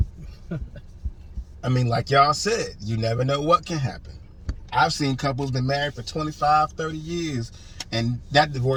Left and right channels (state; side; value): identical; both; correlation 1.00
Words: I mean, like y'all said, you never know what can happen. I've seen couples been married for 25, 30 years, and that